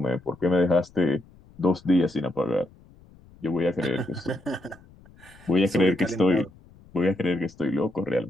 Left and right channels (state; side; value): noise; left; rumble, 25 dB below the sound